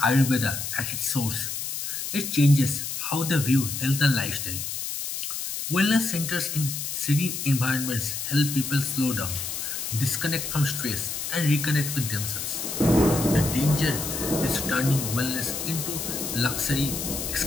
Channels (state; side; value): noise; left; hiss, 4 dB below the sound